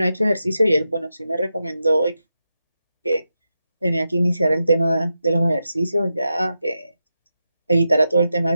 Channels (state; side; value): inverted; both; correlation -0.88